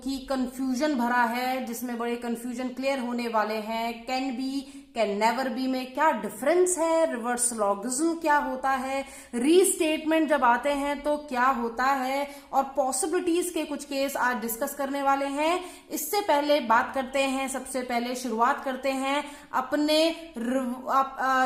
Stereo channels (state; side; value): identical; both; correlation 1.00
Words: कंफ्यूजन भरा है, जिसमें बड़े कंफ्यूजन क्लियर होने वाले हैं। Can be, can never B में क्या डिफरेंस है, रिवर्स लॉगिज्म क्या होता है, रीस्टेटमेंट जब आते हैं तो क्या होता है, और पॉसिबिलिटीज के कुछ केस आज डिस्कस करने वाले हैं। इससे पहले बात करते हैं, सबसे पहले शुरुआत करते हैं अपने